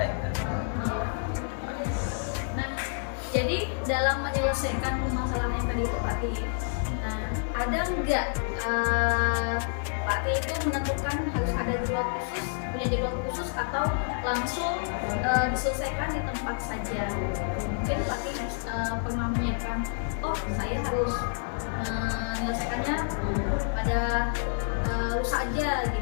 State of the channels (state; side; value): silent; right; digital silence